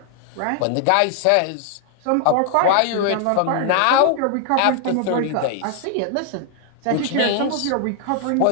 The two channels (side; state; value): both; different; correlation 0.00